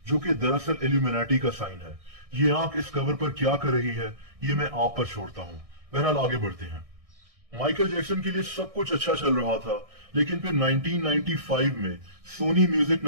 जो कि दरअसल इल्यूमिनाटी का साइन है। ये आंख इस कवर पर क्या कर रही है ये मैं आप पर छोड़ता हूं। बहरहाल आगे बढ़ते हैं। माइकल जैक्सन के लिए सब कुछ अच्छा चल रहा था, लेकिन फिर 1995 में सोनी म्यूजिक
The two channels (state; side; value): late; left; 1.6 ms